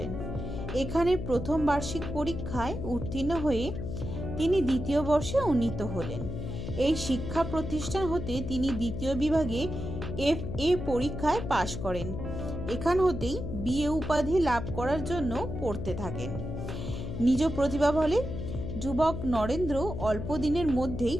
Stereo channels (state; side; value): noise; left; hum, 6 dB below the sound